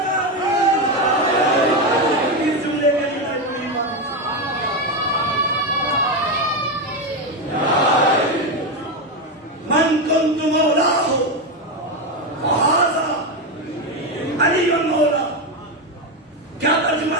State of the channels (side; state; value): both; normal; correlation 0.11